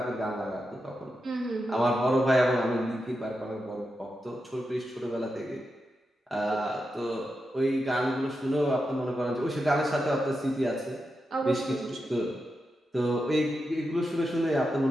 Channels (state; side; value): normal; both; correlation 0.88